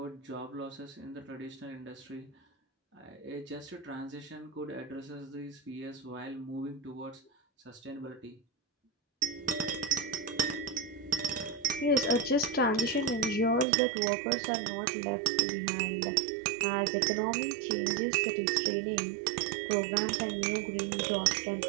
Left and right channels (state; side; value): drops out; left; at 13.7 s